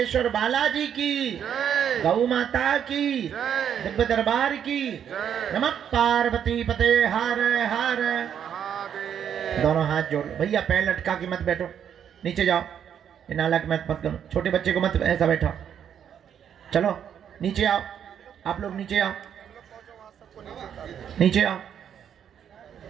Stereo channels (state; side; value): quieter; left; 8.8 dB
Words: बालाजी की, गौ माता की, दिव्य दरबार की। नमः पार्वती पते हर हर। दोनों हाथ जोड़। भैया पैर लटका के मत बैठो, नीचे जाओ। ये नालक मत करो, छोटे बच्चे को मत ऐसा बैठो। चलो नीचे आओ, आप लोग नीचे आओ, नीचे आओ।